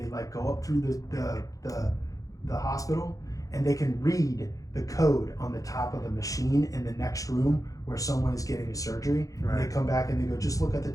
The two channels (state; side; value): late; right; 0.17 ms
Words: like go up through the hospital, and they can read the code on the top of the machine in the next room where someone is getting a surgery. Right. And they come back and they go, just look at the